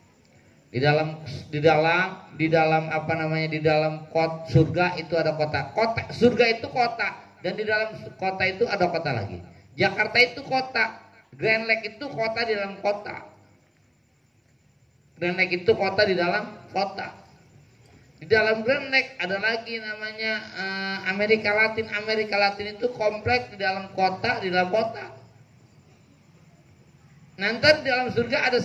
Di dalam apa namanya, di dalam surga itu ada kota. Kota surga itu kota, dan di dalam kota itu ada kota lagi. Jakarta itu kota, Grand Lake itu kota di dalam kota. Grand Lake itu kota di dalam kota. Di dalam Grand Lake ada lagi namanya Amerika Latin. Amerika Latin itu kompleks di dalam kota, Nanti di dalam surga ada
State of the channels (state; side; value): identical; both; correlation 1.00